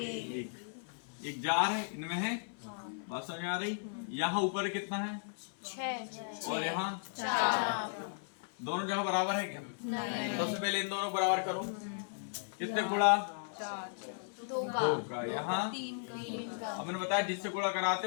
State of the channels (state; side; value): silent; right; 54 dB below the other